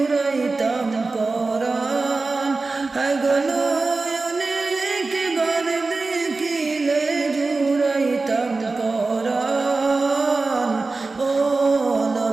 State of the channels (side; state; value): left; quieter; 3.7 dB